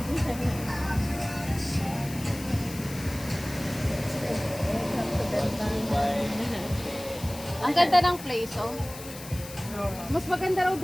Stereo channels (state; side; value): noise; left; hiss, 14 dB below the sound